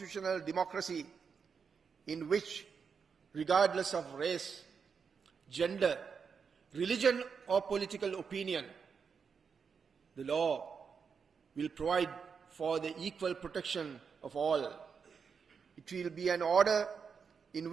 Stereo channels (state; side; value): quieter; left; 6.0 dB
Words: democracy in which, regardless of race, gender, religion or political opinion, the law will provide for the equal protection of all. It will be an order in